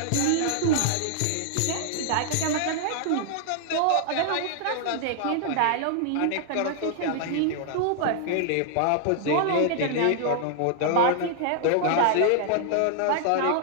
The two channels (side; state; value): both; different; correlation -0.01